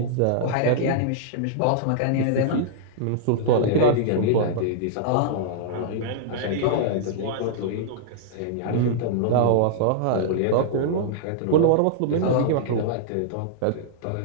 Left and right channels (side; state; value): both; different; correlation -0.02